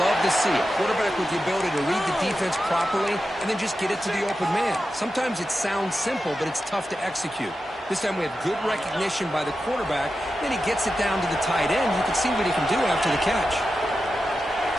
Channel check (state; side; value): normal; both; correlation 0.91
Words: to see. A quarterback with the ability to read the defense properly and then just get it to the open man. Sometimes it sounds simple, but it's tough to execute. This time we have good recognition by the quarterback. Then he gets it down to the tight end. You can see what he can do after the catch.